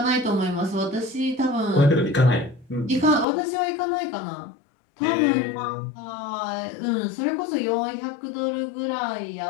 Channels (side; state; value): right; drops out; at 3.2 s